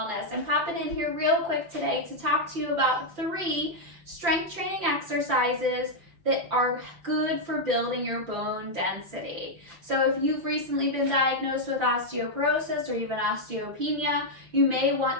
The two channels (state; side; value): late; left; 5.8 ms